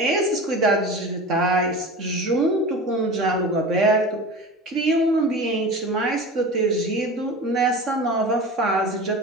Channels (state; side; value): normal; both; correlation 0.33